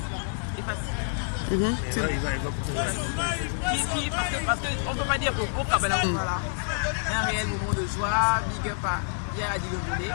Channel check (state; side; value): silent; right; 60 dB below the other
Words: Parce qu'on ne peut pas dire que pour Kabbalah, voilà. Un réel moment de joie, big up à Pierre Adi Londolé,